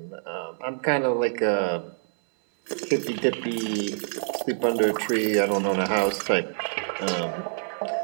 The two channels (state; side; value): silent; left; 61 dB below the other